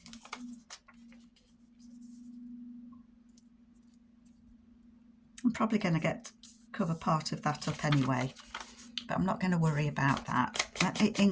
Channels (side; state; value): both; identical; correlation 1.00